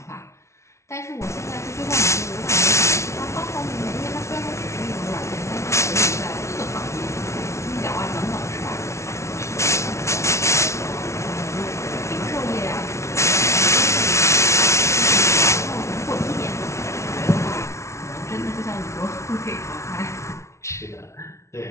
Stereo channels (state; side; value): late; right; 0.13 ms